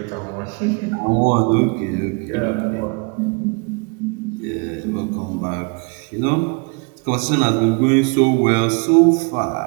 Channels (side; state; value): left; quieter; 32.8 dB